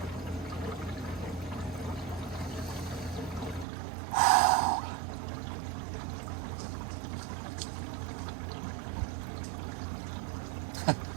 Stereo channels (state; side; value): drops out; left; at 3.7 s